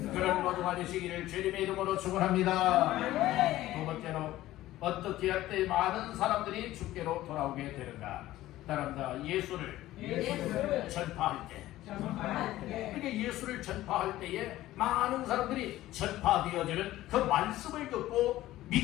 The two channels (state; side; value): quieter; right; 15.4 dB